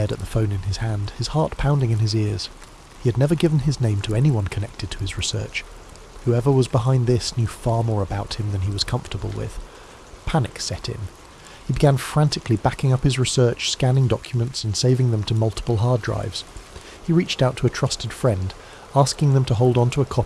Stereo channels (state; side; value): identical; both; correlation 1.00